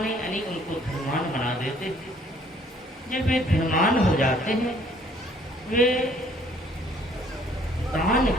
यानी उनको धनवान बना देते हैं। जब वे धनवान हो जाते हैं, वे दान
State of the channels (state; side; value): normal; both; correlation 0.60